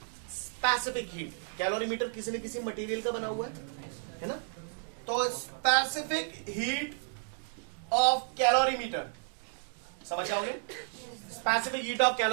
स्पेसिफिक हीट। कैलोरीमीटर किसी न किसी मटेरियल का बना हुआ है ना? तो स्पेसिफिक हीट ऑफ कैलोरीमीटर समझ जाओगे। स्पेसिफिक हीट ऑफ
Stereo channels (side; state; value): left; silent; digital silence